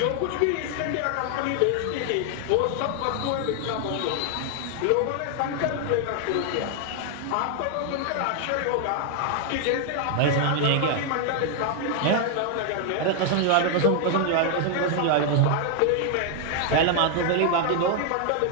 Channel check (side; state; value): both; different; correlation 0.00